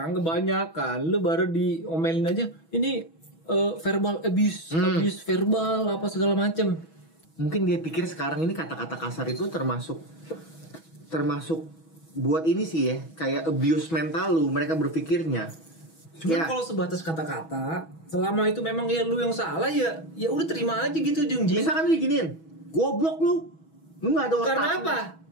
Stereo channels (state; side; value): late; right; 6.2 ms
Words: kebanyakan lu baru diomelin aja. Ini verbal abuse verbal apa segala macem. Mungkin dia pikir sekarang ini kata-kata kasar itu termasuk buat ini sih ya, kayak abuse mental lu, mereka berpikirnya. Cuman kalau sebatas kata-kata, selama itu memang ya lu yang salah ya udah terima aja gitu Jungji. Misalkan lu diginiin, goblok lu nggak ada otak. Karena apa?